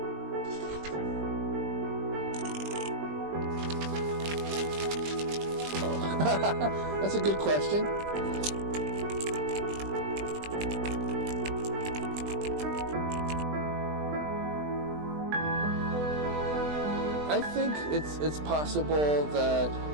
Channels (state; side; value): late; left; 20 ms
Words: That's a good question. I think it's possible that